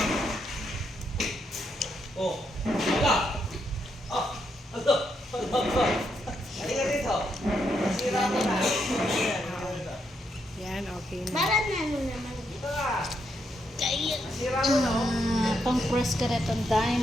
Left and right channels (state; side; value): normal; both; correlation 0.79